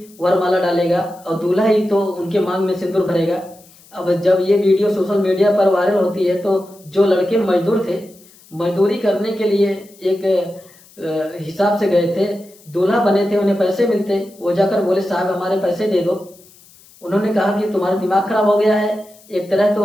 वरमाला डालेगा और दूल्हा ही तो उनके मांग में सिंदूर भरेगा। अब जब ये वीडियो सोशल मीडिया पर वायरल होती है तो जो लड़के मजदूर थे, मजदूरी करने के लिए एक हिसाब से गए थे, दूल्हा बने थे, उन्हें पैसे मिलते, वो जाकर बोले साहब हमारे पैसे दे दो। उन्होंने कहा कि तुम्हारा दिमाग खराब हो गया है, एक तरह तो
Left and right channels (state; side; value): noise; left; hiss, 26 dB below the sound